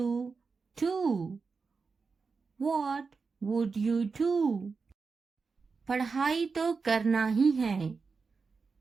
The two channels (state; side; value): quieter; left; 4.8 dB